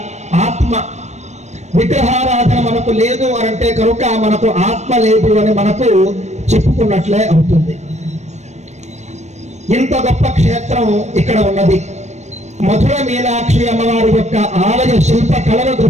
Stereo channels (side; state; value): left; late; 0.33 ms